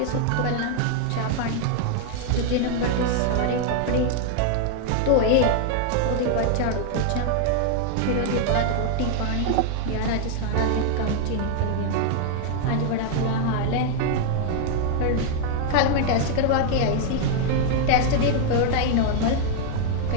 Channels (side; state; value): both; different; correlation 0.00